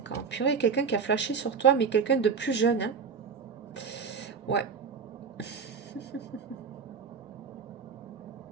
ans. Purée, quelqu'un qui a flashé sur toi, mais quelqu'un de plus jeune. Hein. Ouais.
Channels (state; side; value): quieter; left; 6.0 dB